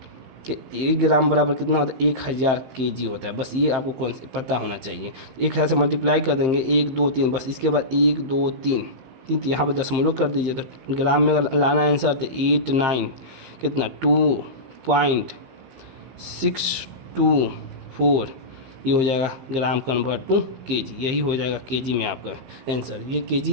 कि 1 ग्राम बराबर कितना होता है 1000 केजी होता है। बस ये आपको कौन पता होना चाहिए। 1000 से मल्टीप्लाई कर देंगे 1 2 3, बस इसके बाद 1 2 3 यहाँ पर दशमलव कर दीजिए। तो ग्राम में अगर लाना आंसर तो 89 कितना 2.624, ये हो जाएगा ग्राम कन्वर्ट टू केजी, यही हो जाएगा केजी में आपका आंसर। ये केजी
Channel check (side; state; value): left; late; 15 ms